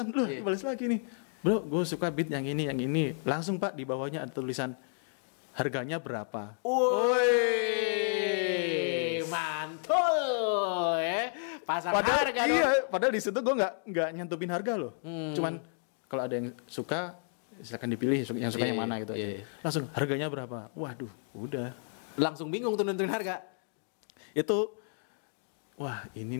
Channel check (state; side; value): silent; right; 57 dB below the other